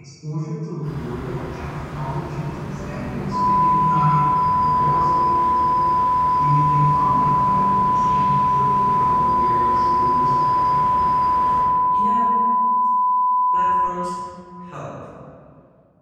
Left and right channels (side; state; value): both; identical; correlation 1.00